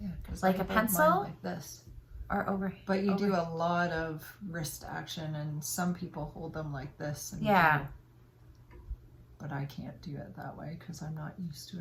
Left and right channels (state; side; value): identical; both; correlation 1.00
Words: like a pencil? Like this. Or over. But you do a lot of wrist action, and some people hold them like this. And yeah. But I can't do it that way because I'm not used to